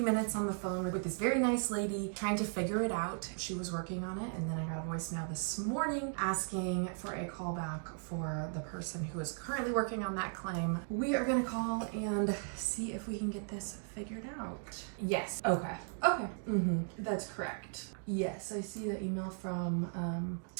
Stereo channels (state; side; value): silent; left; 53 dB below the other